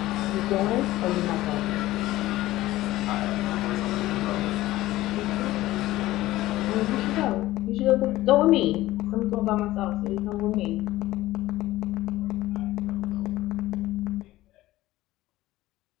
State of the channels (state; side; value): quieter; right; 16.5 dB